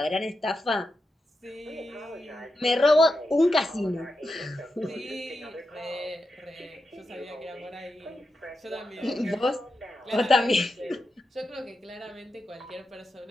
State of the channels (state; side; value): normal; both; correlation 0.88